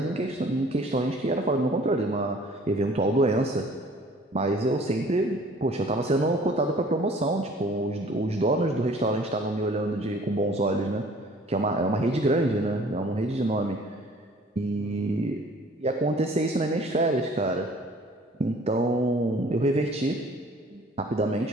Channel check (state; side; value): normal; both; correlation 0.53